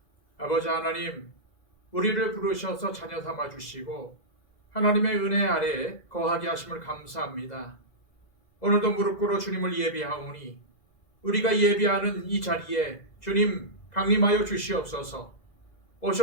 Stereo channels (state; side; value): late; right; 2.0 ms